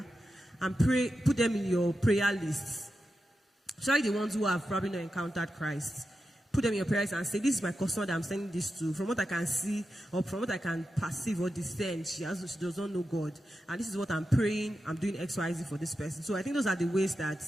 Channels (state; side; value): normal; both; correlation 0.90